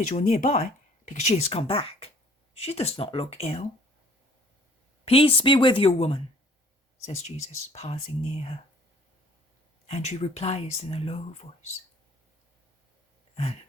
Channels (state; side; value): normal; both; correlation 0.55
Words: or nearby, because she has come back. She does not look ill." "Peace be with you, woman," says Jesus, passing near her. And she replies in a low voice, "And